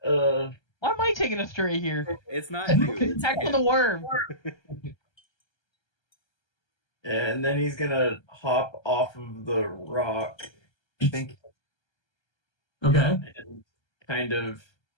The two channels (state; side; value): late; right; 1.3 ms